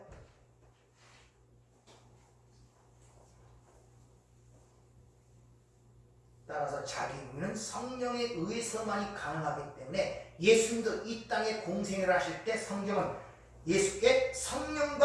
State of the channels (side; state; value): both; identical; correlation 1.00